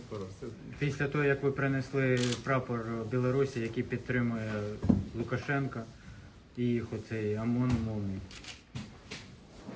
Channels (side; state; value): both; identical; correlation 1.00